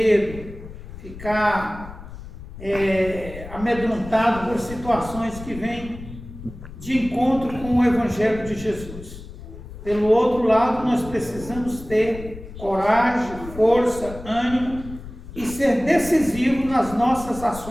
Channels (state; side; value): noise; left; rumble, 14 dB below the sound